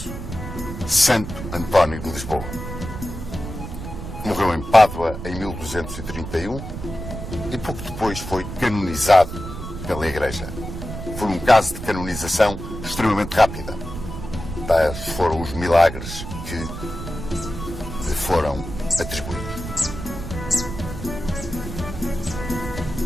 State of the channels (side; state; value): right; noise; rumble, 8 dB below the sound